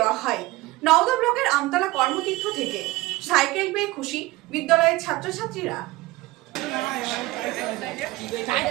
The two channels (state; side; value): quieter; left; 19.6 dB